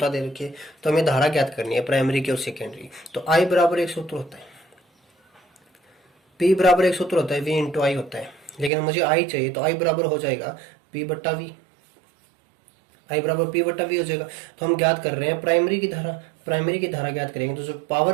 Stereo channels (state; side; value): drops out; left; at 8.7 s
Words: दे रखी है। तो हमें धारा ज्ञात करनी है प्राइमरी की और सेकेंडरी। तो आई बराबर एक सूत्र होता है, पी बराबर एक सूत्र होता है, वी इंटू आई होता है, लेकिन मुझे आई चाहिए तो आई बराबर हो जाएगा पी बट्टा वी, आई बराबर पी बट्टा वी हो जाएगा। तो हम ज्ञात कर रहे हैं प्राइमरी की धारा, प्राइमरी की धारा ज्ञात करेंगे तो जो